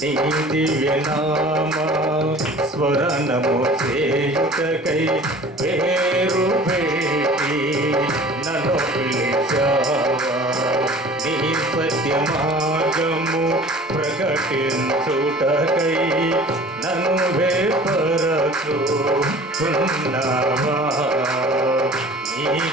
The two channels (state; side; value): normal; both; correlation 0.45